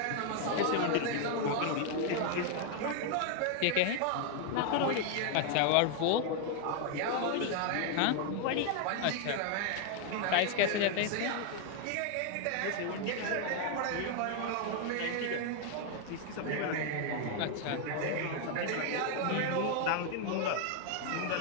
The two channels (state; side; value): different; both; correlation 0.00